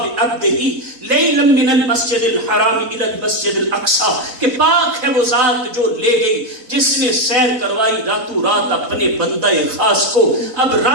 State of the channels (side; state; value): left; late; 4.0 ms